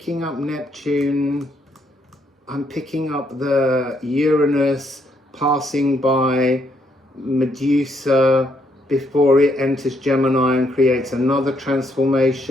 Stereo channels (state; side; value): normal; both; correlation 0.73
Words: up Neptune. I'm picking up the Uranus passing by Medusa, before it enters Gemini and creates another